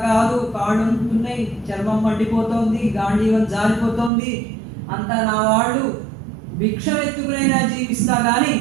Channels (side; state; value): left; drops out; at 4.1 s